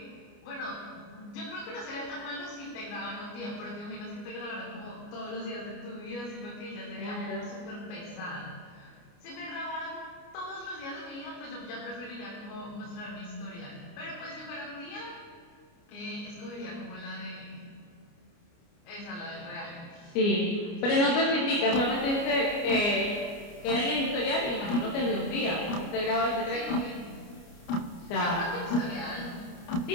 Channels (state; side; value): late; right; 29 ms